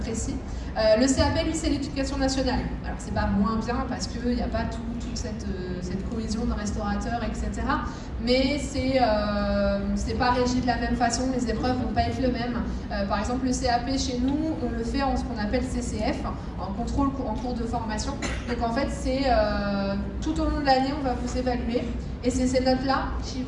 précis. Le CAP, lui, c'est l'éducation nationale. Alors, c'est pas moins bien parce qu'il n'y a pas toute cette cohésion de restaurateurs, etc. Mais c'est pas régi de la même façon, les épreuves vont pas être les mêmes. Par exemple, le CAP chez nous, on le fait en ce qu'on appelle CCF, en contrôle en cours de formation. Donc en fait, c'est tout au long de l'année, on va vous évaluer. Et c'est ces notes-là qui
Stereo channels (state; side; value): identical; both; correlation 1.00